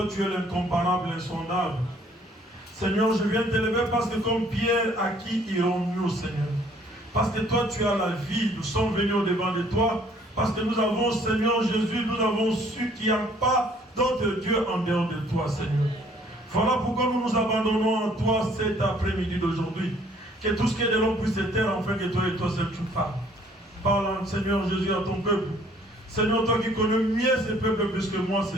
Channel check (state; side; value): normal; both; correlation 0.60